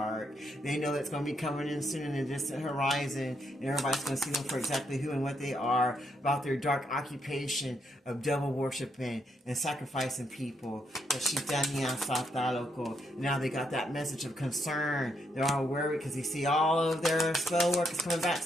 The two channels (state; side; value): normal; both; correlation 0.77